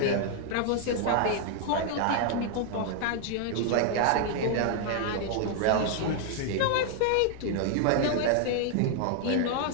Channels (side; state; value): both; different; correlation 0.00